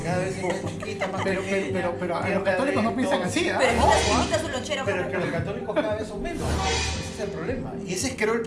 cada vez es más chiquita, más Pero pequeña. los católicos no piensan así, ¿ah? Pero imita su lonchera. Pero es que los católicos cada vez son menos. Ese es el problema. Y ese es, creo, el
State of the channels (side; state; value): both; identical; correlation 1.00